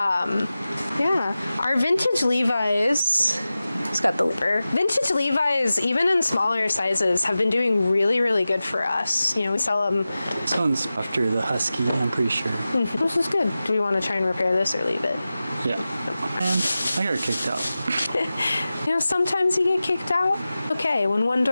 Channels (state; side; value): inverted; both; correlation -0.95